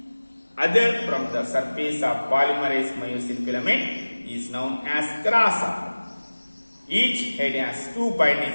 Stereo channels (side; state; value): both; inverted; correlation -1.00